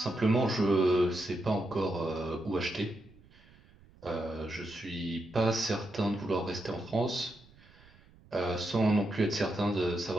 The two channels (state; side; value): noise; right; rumble, 26 dB below the sound